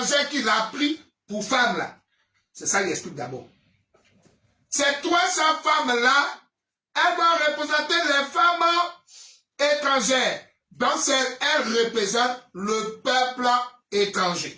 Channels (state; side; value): identical; both; correlation 1.00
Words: qu'il a pris pour femmes là. C'est ça qu'il explique d'abord. Ces 300 femmes-là, elles vont représenter les femmes étrangères. Donc, elles représentent le peuple